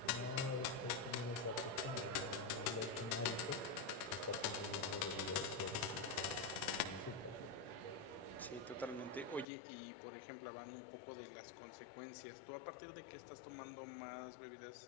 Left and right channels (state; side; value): drops out; right; at 9.5 s